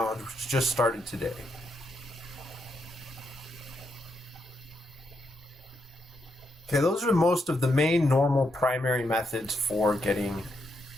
which just started today. Okay, those are most of the main normal primary methods for getting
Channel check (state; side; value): normal; both; correlation 0.81